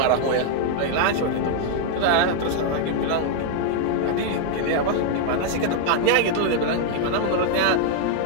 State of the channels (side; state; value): both; different; correlation 0.00